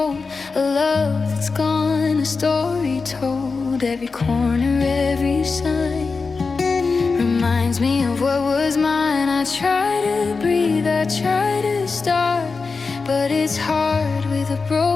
a love that's gone, a story told. Every corner, every sign reminds me of what was mine. I try to breathe, I try to start, but it's hard with a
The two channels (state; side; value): quieter; right; 4.4 dB